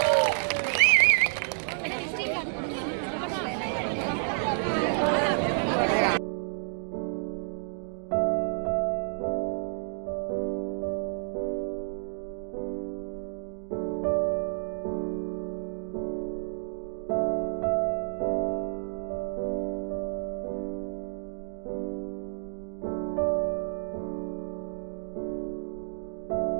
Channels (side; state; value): left; silent; digital silence